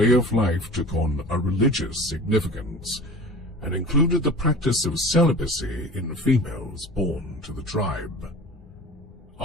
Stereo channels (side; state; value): both; normal; correlation 0.39